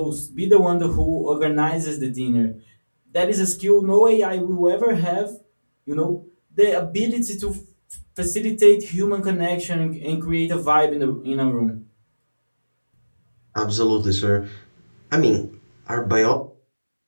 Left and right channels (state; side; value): inverted; both; correlation -1.00